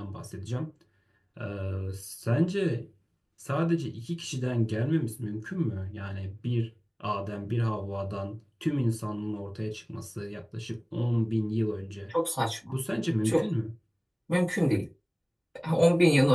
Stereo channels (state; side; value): identical; both; correlation 1.00